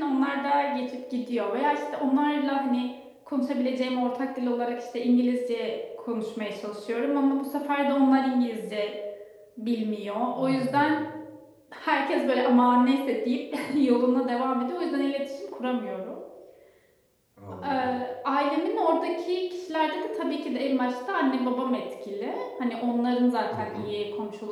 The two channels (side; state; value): both; identical; correlation 1.00